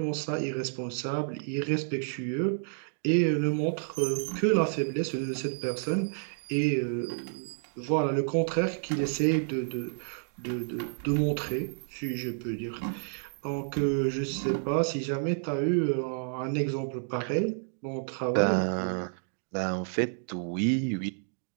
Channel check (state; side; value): silent; left; digital silence